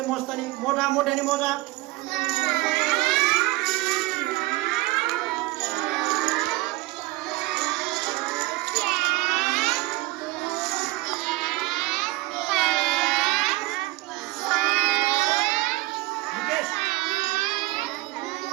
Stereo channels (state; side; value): quieter; left; 20.3 dB